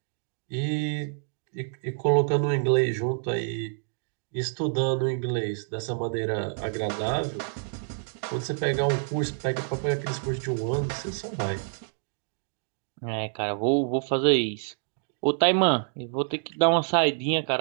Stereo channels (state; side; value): silent; left; digital silence